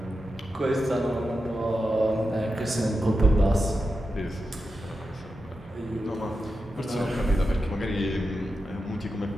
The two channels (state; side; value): normal; both; correlation 0.90